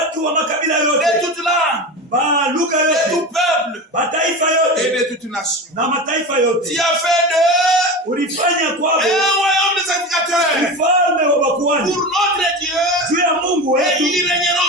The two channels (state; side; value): normal; both; correlation 0.26